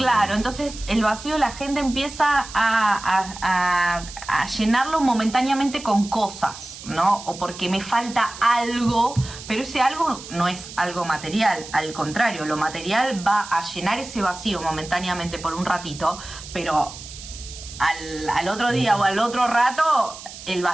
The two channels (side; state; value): right; noise; hiss, 14 dB below the sound